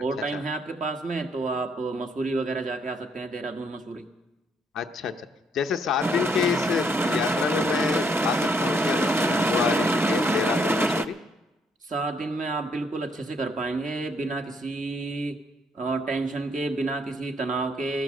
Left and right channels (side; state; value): both; normal; correlation 0.70